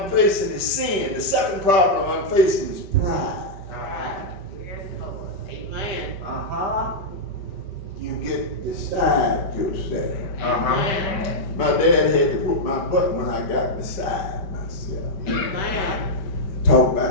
facing is sin. The second problem I'm facing is pride. Amen. You get beside yourself. Amen. My dad had to whoop my butt when I got beside myself. Amen. Talk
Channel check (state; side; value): late; right; 5.1 ms